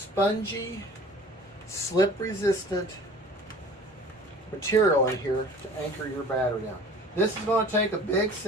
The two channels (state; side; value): normal; both; correlation 0.45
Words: slip-resistant material in here to anchor your battery down. This is going to take a big